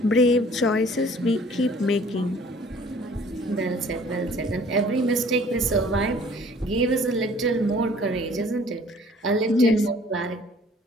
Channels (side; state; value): both; normal; correlation 0.53